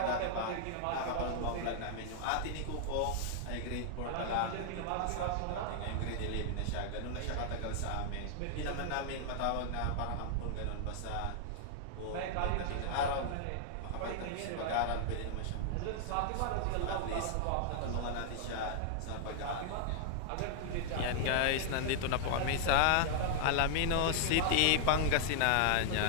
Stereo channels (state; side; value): different; both; correlation 0.00